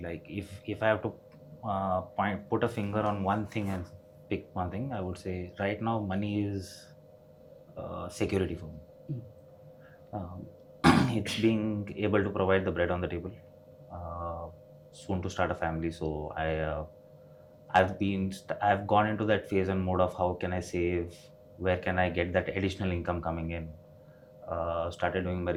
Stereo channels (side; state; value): both; identical; correlation 1.00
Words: like if I have to put a finger on one thing and pick one thing, I would say right now money is security for me. It's being able to provide the bread on the table. Soon to start a family, so I've gone into that phase and mode of how can I save, where can I get that additional income coming in. Started doing my